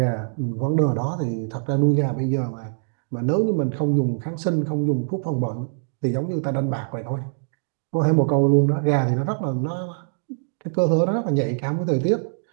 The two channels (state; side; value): silent; left; digital silence